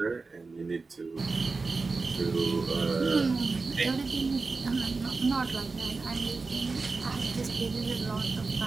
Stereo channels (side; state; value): left; quieter; 4.0 dB